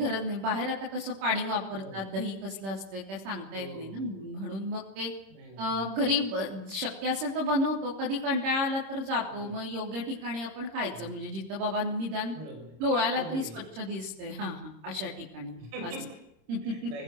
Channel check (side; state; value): left; late; 26 ms